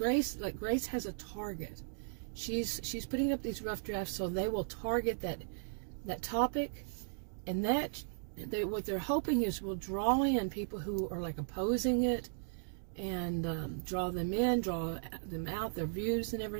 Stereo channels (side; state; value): left; silent; digital silence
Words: like Grace has a target. She's putting up these rough drafts, so they will target that topic, and what they're hoping is will draw in people who are like opposing it, and draw them in, draw them out, their views and